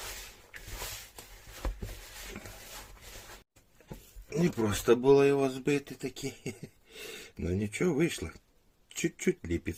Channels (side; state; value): both; identical; correlation 1.00